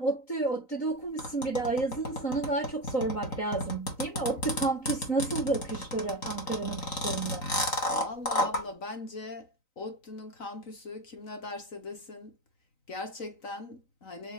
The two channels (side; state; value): right; late; 3.9 ms